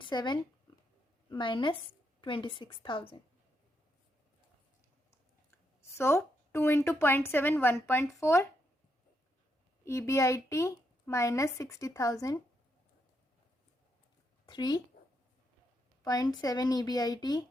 minus 26,000. So 2 into 0.7 1.4. EBIT minus 60,000 3.7 EBIT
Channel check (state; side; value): normal; both; correlation 0.80